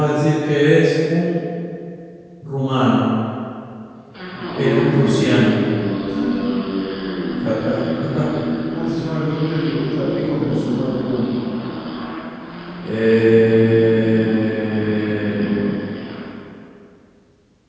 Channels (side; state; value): both; identical; correlation 1.00